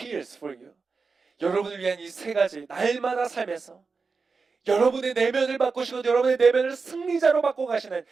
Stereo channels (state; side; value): quieter; left; 4.6 dB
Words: for you. 여러분을 위한 이 세 가지 날마다 삶에서 여러분의 내면을 바꾸시고 여러분의 내면을 승리자로 바꿔가시는